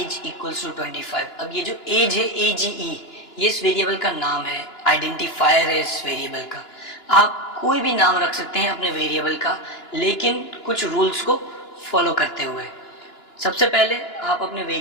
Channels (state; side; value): late; right; 2.9 ms